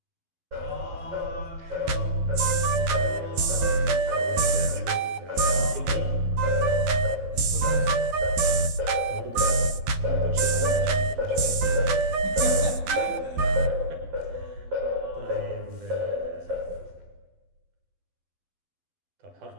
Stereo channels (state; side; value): late; left; 12 ms